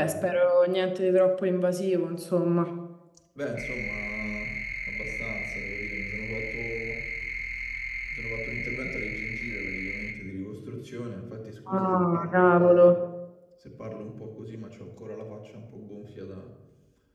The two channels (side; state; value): both; identical; correlation 1.00